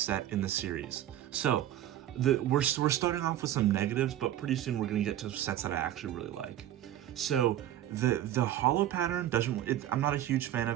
in the series. So we're starting off with some negatives, but pretty soon we're going to get to sets that I actually really like. So the hollow pattern I'm not a huge fan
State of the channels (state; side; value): quieter; left; 12.3 dB